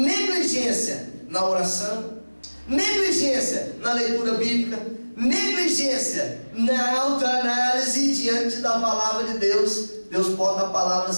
na oração, negligência na leitura bíblica, negligência na autoanálise diante da palavra de Deus. Deus bota a palavra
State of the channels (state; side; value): inverted; both; correlation -1.00